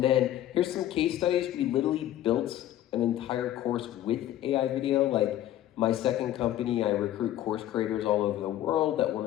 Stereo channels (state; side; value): quieter; right; 12.7 dB